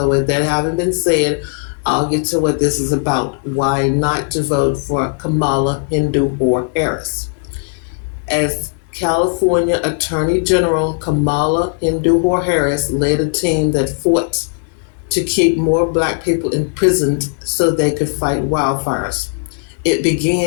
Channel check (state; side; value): silent; right; 58 dB below the other